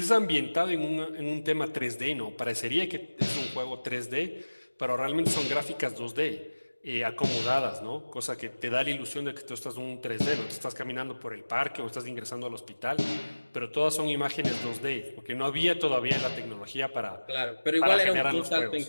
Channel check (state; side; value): inverted; both; correlation -1.00